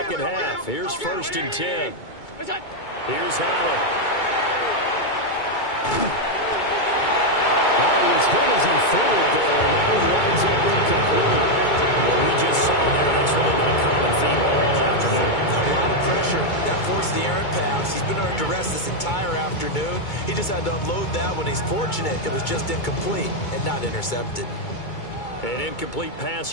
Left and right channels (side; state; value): right; late; 2.2 ms